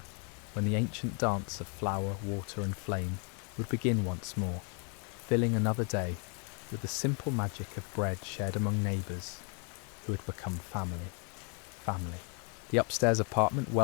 when the ancient dance of flour, water and flame would begin once more, filling another day with the simple magic of bread shared among neighbours who had become family. The upstairs apartment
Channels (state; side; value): quieter; right; 37.8 dB